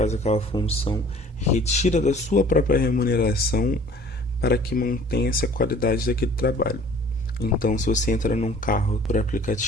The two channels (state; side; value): normal; both; correlation 0.50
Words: aquela função retira da sua própria remuneração para que mantenha-se a qualidade daquele trabalho. Então, se você entra num carro por